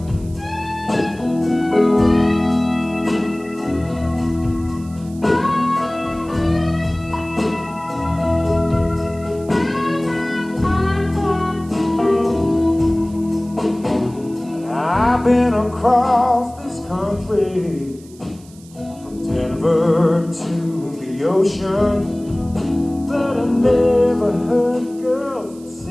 I've been across this country, from Denver to the ocean, but I never heard girls that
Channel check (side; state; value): right; noise; hiss, 25 dB below the sound